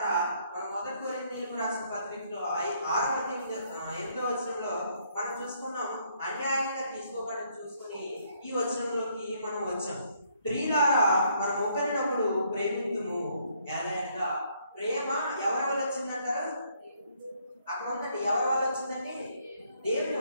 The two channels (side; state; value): both; inverted; correlation -0.68